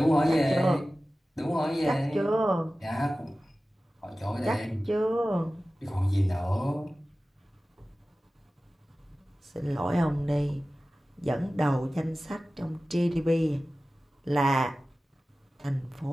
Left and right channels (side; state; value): both; normal; correlation 0.96